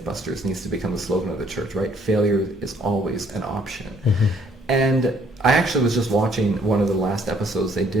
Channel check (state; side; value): normal; both; correlation 0.63